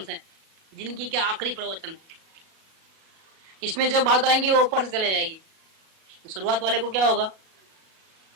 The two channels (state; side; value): late; left; 37 ms